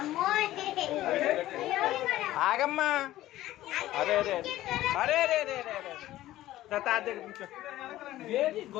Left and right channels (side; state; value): right; quieter; 15.0 dB